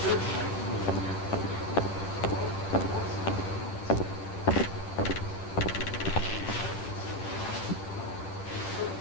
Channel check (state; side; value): late; right; 10 ms